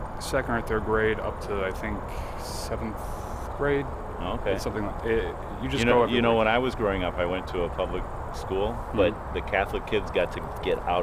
2nd or 3rd grade up to I think 7th grade. Okay. Something like it. You just go every week. When I was growing up, I went to a public school, but the Catholic kids got to get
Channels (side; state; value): both; identical; correlation 1.00